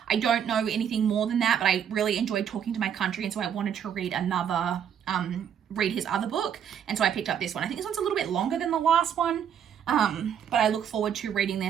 I don't know anything more than that, but I really enjoyed Talking to My Country, and so I wanted to read read his other book, and so I picked up this one. I think this one's a little bit longer than the last one. But I look forward to reading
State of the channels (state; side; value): quieter; left; 8.6 dB